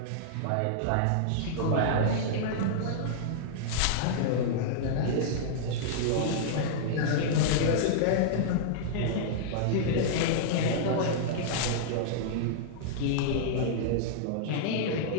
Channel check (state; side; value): different; both; correlation -0.02